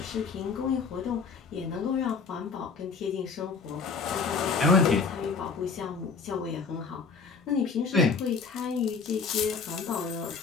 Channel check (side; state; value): right; quieter; 5.1 dB